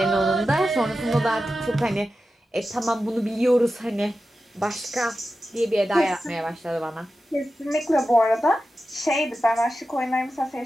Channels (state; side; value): normal; both; correlation 0.92